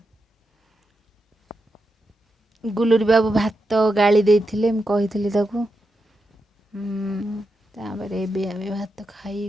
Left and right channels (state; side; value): normal; both; correlation 0.87